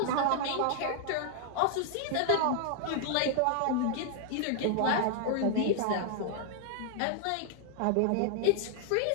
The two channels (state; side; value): different; both; correlation 0.00